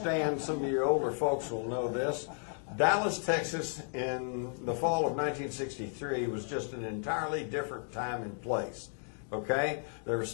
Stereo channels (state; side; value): silent; right; 55 dB below the other